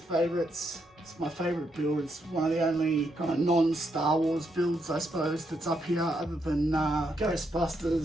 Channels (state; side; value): normal; both; correlation 0.79